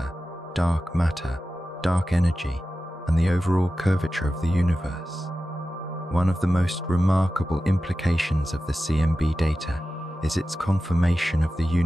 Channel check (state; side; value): normal; both; correlation 0.94